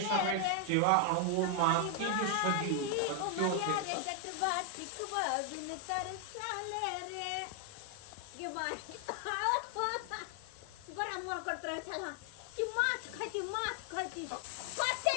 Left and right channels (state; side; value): different; both; correlation 0.00